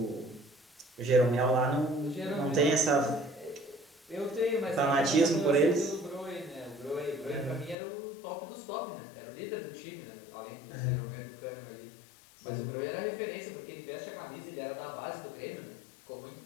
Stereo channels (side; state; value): right; drops out; at 7.8 s